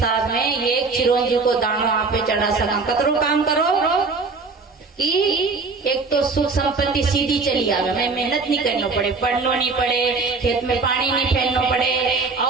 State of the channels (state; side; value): quieter; left; 4.2 dB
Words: में एक चिरंजी को दानो आप चढ़ा सका। कतरो काम करो कि एक तो सुख संपत्ति सीधी चली आवे, मैं मेहनत नहीं करना पड़े, पढ़ना नहीं पड़े, खेत में पानी नहीं फेरना पड़े,